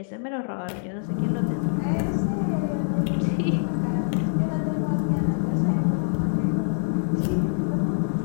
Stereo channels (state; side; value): silent; right; digital silence